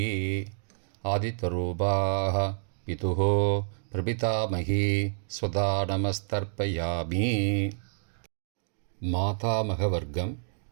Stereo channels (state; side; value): silent; left; digital silence